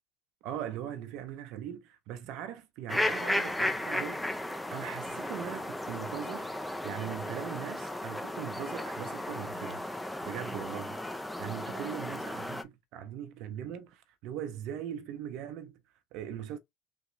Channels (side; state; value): both; normal; correlation 0.74